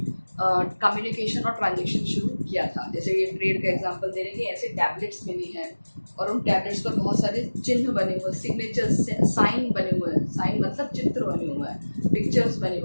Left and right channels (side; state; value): both; inverted; correlation -1.00